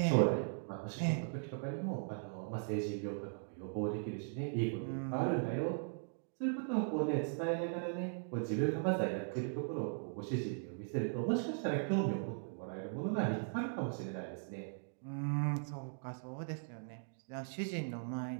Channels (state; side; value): silent; left; digital silence